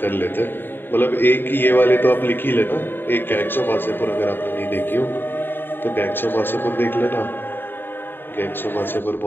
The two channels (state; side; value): late; right; 0.097 ms